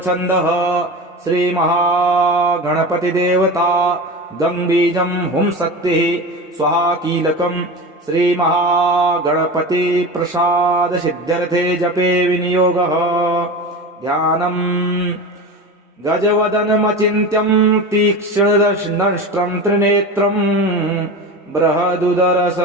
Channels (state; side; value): normal; both; correlation 0.28